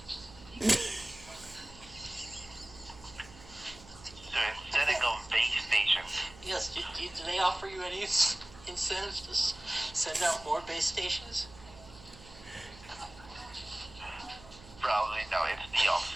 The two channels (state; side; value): noise; right; hum, 20 dB below the sound